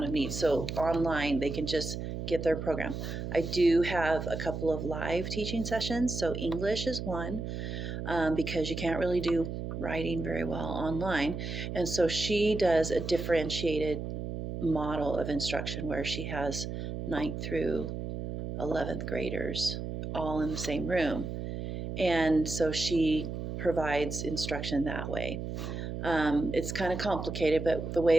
of needs. So online, they can just get their program. I do have a couple of live teaching sessions. So English is one, because you can't really do writing very well online. And so she does a differentiated model of instruction where she has 9th through 11th graders all in the same room. And so she provides instruction that way. It's kind of complicated, but the way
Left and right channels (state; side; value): noise; right; hum, 5 dB below the sound